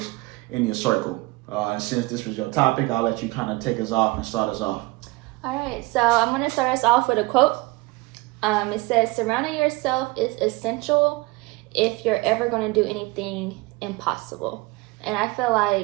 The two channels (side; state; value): left; quieter; 23.3 dB